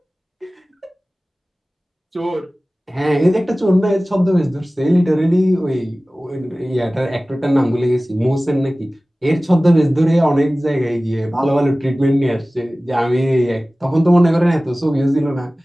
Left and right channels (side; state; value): both; normal; correlation 0.97